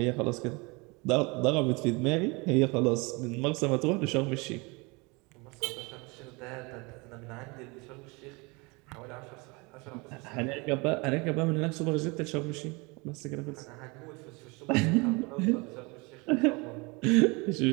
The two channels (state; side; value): quieter; left; 27.4 dB